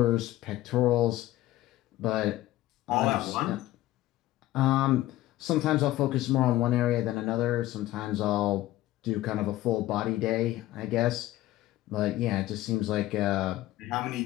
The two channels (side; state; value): right; quieter; 15.6 dB